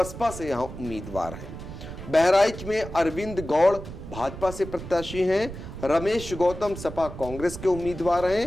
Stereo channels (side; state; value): right; noise; rumble, 11 dB below the sound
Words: से यहाँ उम्मीदवार हैं। बहराइच में अरविंद गौड़ भाजपा से प्रत्याशी हैं। रमेश गौतम सपा कांग्रेस के उम्मीदवार